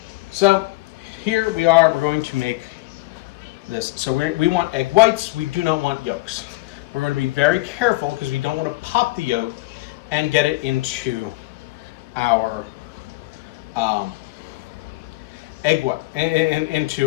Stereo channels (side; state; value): right; quieter; 20.9 dB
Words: So here we are. We're going to make this. So we want egg whites. We do not want yolks. We're going to be very careful because we don't want to pop the yolk and get it into our egg white